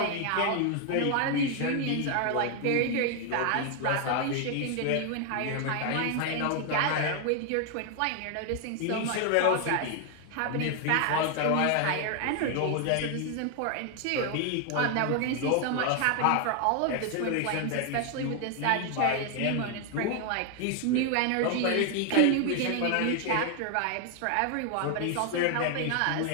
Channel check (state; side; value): different; both; correlation 0.00